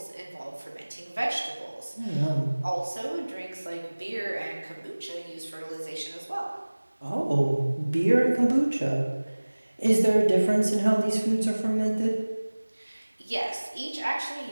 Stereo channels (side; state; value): both; inverted; correlation -1.00